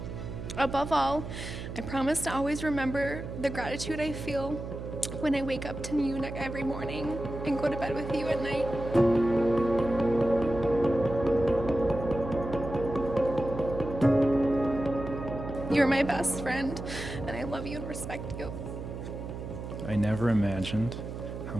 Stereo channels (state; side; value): noise; right; hum, 8 dB below the sound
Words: Above all, I promise to always remember the gratitude I feel when I wake up to you every morning and go to bed with you at night. You're my best friend, and I love you and respect you. I never imagined how